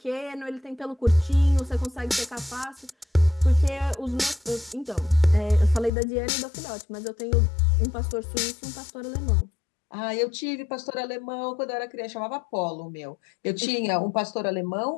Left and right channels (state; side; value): drops out; right; at 5.9 s